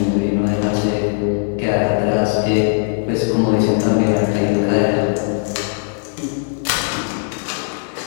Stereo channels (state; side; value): silent; right; 67 dB below the other